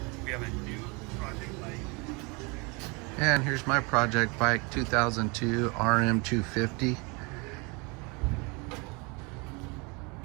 We have a new project bike. And here's my project bike, 2002 RM250.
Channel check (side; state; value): left; quieter; 29.2 dB